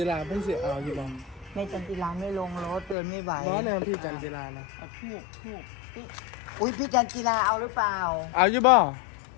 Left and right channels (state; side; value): drops out; right; at 3.0 s